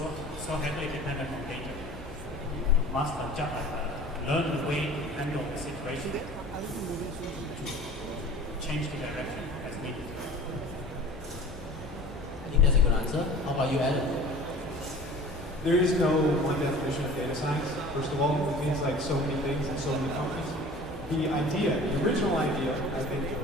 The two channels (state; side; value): normal; both; correlation 0.43